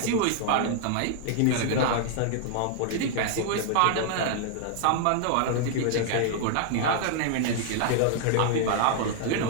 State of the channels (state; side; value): different; both; correlation -0.01